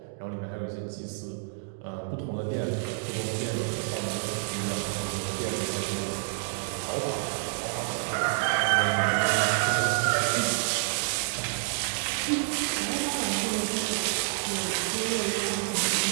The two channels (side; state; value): left; silent; digital silence